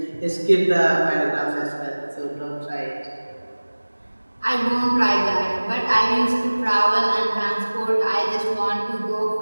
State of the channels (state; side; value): inverted; both; correlation -1.00